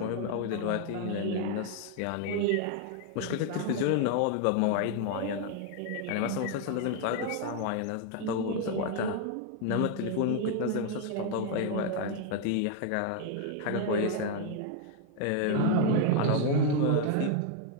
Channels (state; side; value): different; both; correlation 0.00